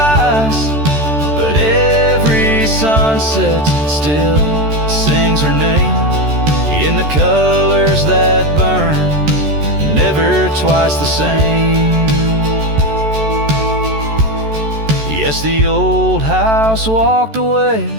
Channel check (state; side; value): late; left; 14 ms